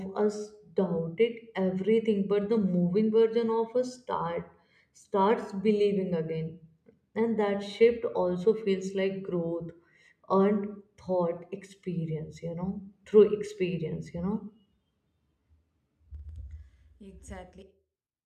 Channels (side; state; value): both; identical; correlation 1.00